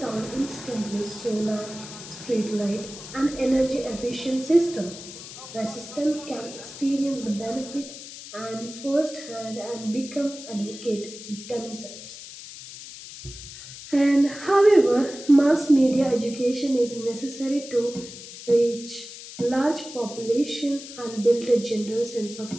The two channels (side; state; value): left; noise; hiss, 13 dB below the sound